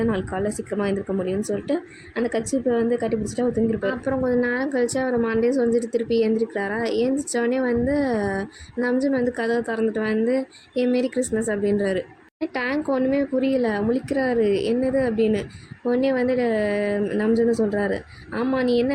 நாளைக்கு காலையில் சீக்கிரமாக எழுந்திருக்க முடியும்னு சொல்லிட்டு அந்த கட்சிப்பை வந்து கட்டி பிடிச்சிட்டு அவர் தூங்கிருப்பார். அப்புறம் கொஞ்சம் நேரம் கழிச்சு அவர் மண்டே சொல்லிட்டு திருப்பி எழுந்திரிக்கிறாரா. எழுந்திரிச்சோடனே வந்து நம்ஜுன் வந்து கதவை திறந்துட்டு வந்து மாரி கிறிஸ்மஸ் அப்படின்றாரு. டேங்க் ஒன்றுமே புரியல, முழிக்கிறாரு என்னது அப்படின்னு. உடனே வந்து நம்ஜுன்னு சொல்கிறாரு, ஆமாம் நீ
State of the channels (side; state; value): both; identical; correlation 1.00